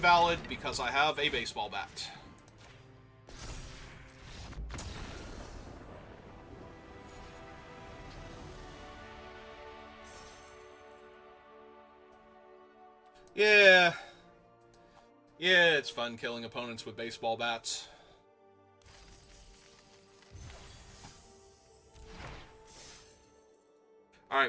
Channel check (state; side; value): identical; both; correlation 1.00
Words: because I have a baseball bat. Yeah. Yeah, it's fun killing opponents with baseball bats.